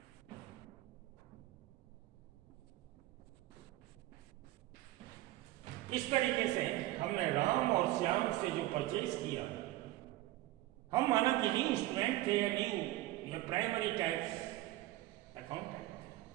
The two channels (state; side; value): quieter; left; 16.7 dB